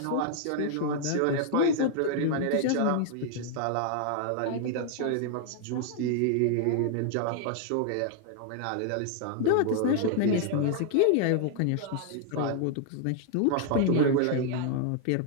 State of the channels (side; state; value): both; different; correlation 0.00